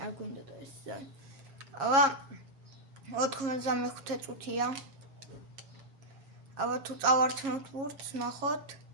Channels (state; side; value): late; left; 7.4 ms